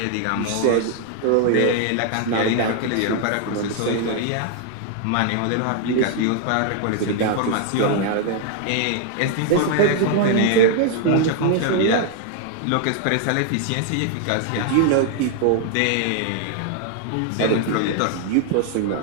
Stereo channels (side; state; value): both; different; correlation 0.00